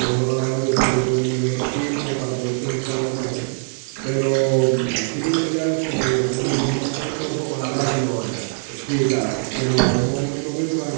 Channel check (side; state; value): left; silent; digital silence